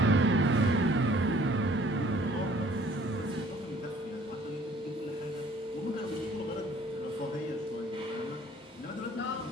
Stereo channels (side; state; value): both; normal; correlation 0.56